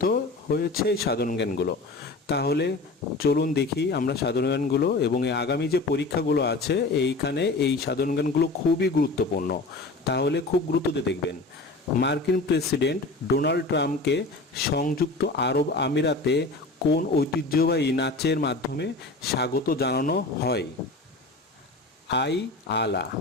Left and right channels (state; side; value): quieter; right; 3.3 dB